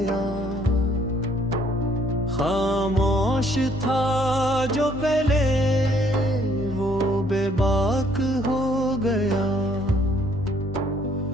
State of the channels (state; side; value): normal; both; correlation 0.64